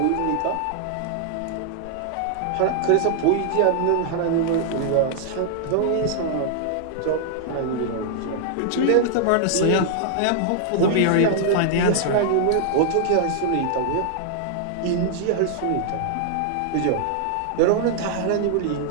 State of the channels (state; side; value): different; both; correlation -0.01